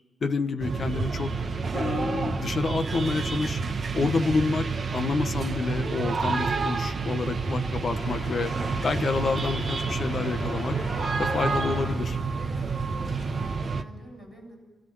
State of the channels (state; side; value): normal; both; correlation 0.81